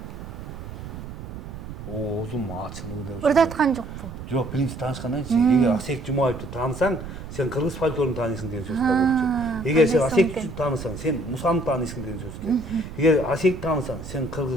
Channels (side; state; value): right; noise; rumble, 11 dB below the sound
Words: Оозум ачылды деп. Ырдаткан жокпу? Жок, биринчи таанышкандан кийин эгер Асек Жумаевди таанысаң, сен кыргыз фольклорун тааныйсың деген сөз болчу. Эгер сен Асекти таанысаң, сен Мусаны таанысың деген сөз экен. Эгер Асекти таанысаң, сен